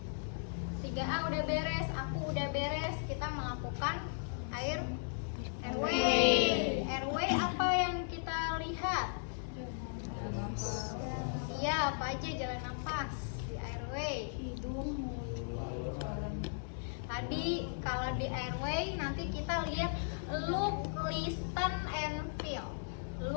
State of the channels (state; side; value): silent; right; digital silence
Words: 3A udah beres, aku udah beres. Kita melakukan airway. Airway apa yang kita lihat? Iya, apa aja jalan nafas di airway? Tadi kalau di airway nanti kita lihat look, listen, and feel.